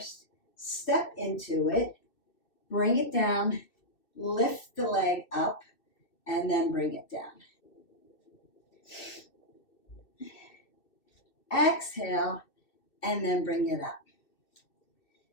step into it, bring it down, lift the leg up, and then bring it down. Exhale, and then bring it up.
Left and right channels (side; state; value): right; late; 2.7 ms